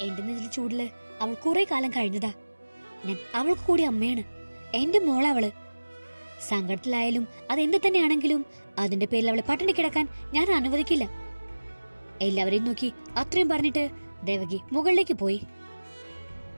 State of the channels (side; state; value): both; inverted; correlation -1.00